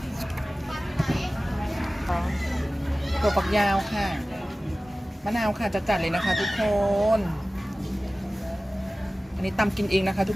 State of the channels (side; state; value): both; normal; correlation 0.97